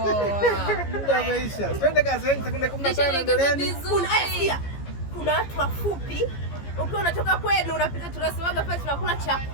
Muda umeisha. Twende kazi, sekunde 15 endeleeni. Kuna watu wafupi. Ukiwa unatoka kwenu unapita, tunasemaga pale tunakula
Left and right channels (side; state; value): right; late; 15 ms